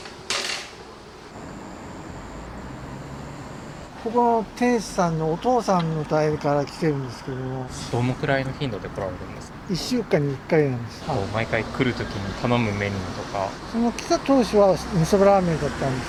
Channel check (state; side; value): identical; both; correlation 1.00